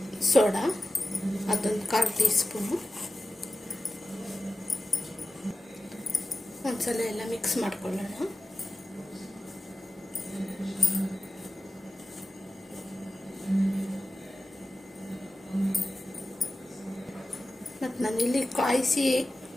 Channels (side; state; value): both; normal; correlation 0.94